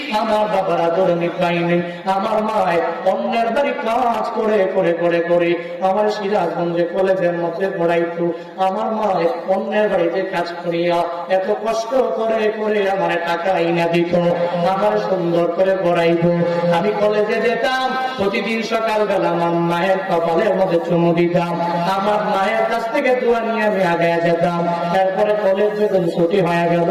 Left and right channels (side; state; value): both; identical; correlation 1.00